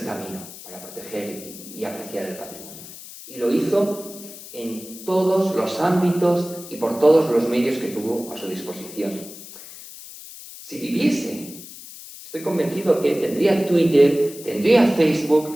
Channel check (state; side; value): noise; left; hiss, 15 dB below the sound